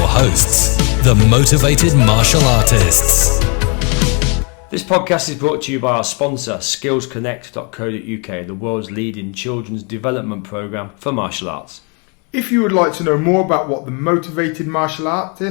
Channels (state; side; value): quieter; right; 34.5 dB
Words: hosts, the Motivated Martial Artists. This podcast is brought to you by our sponsor, skillsconnect.co.uk, the world's leading children's development program for martial arts. If you would like to know more about what the Motivated Martial